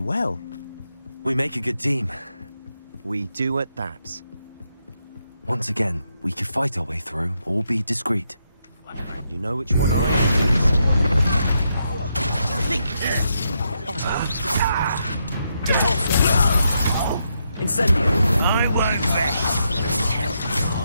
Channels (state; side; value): inverted; both; correlation -0.80